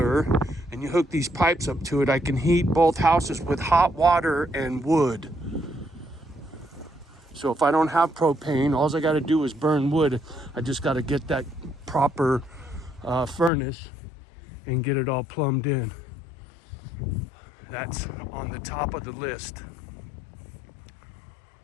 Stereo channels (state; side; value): drops out; right; at 13.5 s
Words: and you hook these pipes up to it, I can heat both houses with hot water and wood. So if I don't have propane, all I got to do is burn wood. I just got to get that proper furnace and get it all plumbed in. That's on the top of the list.